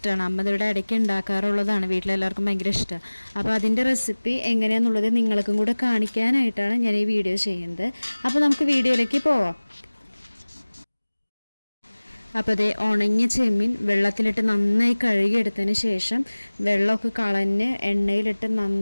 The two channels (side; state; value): both; inverted; correlation -1.00